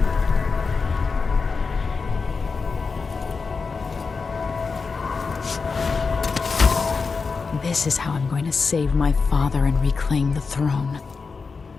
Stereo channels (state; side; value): quieter; right; 4.8 dB